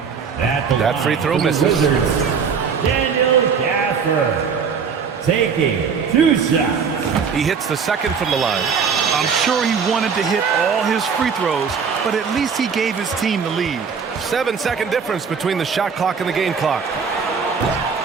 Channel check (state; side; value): quieter; left; 6.1 dB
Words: That free throw misses. Daniel Gafford taking 2 shots. He hits the second from the line. I'm sure he wanted to hit all his free throws, but at least he gave his team the lead. 7-second difference between the shot clock and the game clock.